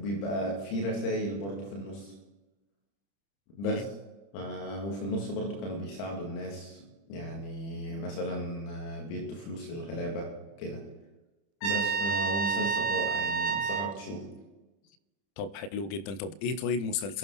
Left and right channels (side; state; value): right; late; 30 ms